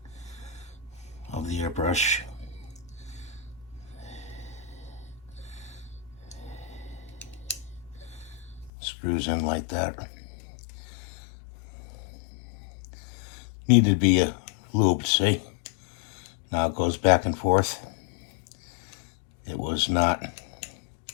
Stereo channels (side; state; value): right; drops out; at 8.7 s